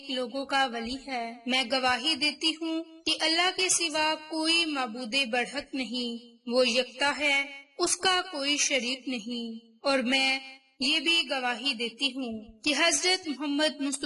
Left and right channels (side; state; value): both; identical; correlation 1.00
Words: لوگوں کا ولی ہے۔ میں گواہی دیتی ہوں کہ اللہ کے سوا کوئی معبود برحق نہیں، وہ یکتا ہے، اس کا کوئی شریک نہیں۔ اور میں یہ بھی گواہی دیتی ہوں کہ حضرت محمد